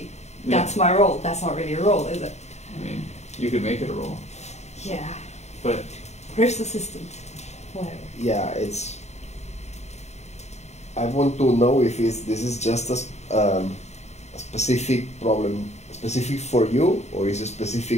Yeah. That's my role. That's not really a role, is it? I mean, you could make it a role, Yeah. but First assistant. Whatever. Yeah, it's. I want to know if this is just a specific problem, specific for you, or is it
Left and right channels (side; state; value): right; late; 0.32 ms